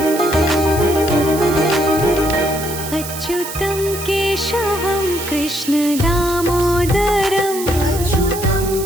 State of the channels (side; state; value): right; noise; hiss, 9 dB below the sound